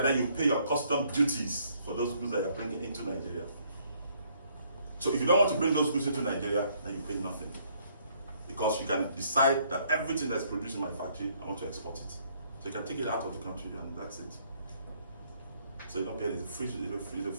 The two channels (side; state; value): both; inverted; correlation -0.66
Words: then you pay your custom duties for those goods that you're bringing into Nigeria. So if you don't want to bring those goods into Nigeria, then you pay nothing. Because you can decide that everything that's produced in my factory, I want to export it. So you can take it out of the country and that's it. So you don't pay, it's a free